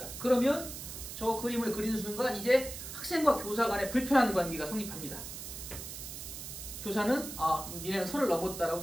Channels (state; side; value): noise; right; hiss, 9 dB below the sound